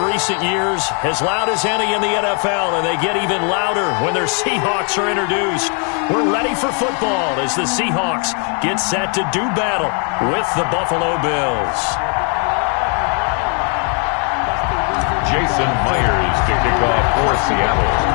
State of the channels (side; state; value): right; quieter; 39.8 dB